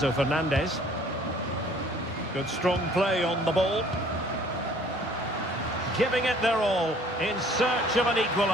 Fernandez. Good strong play on the ball. Giving it their all in search of an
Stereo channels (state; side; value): normal; both; correlation 0.55